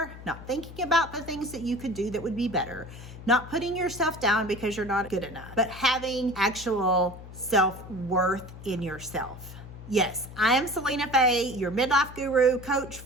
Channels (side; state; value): left; noise; hum, 15 dB below the sound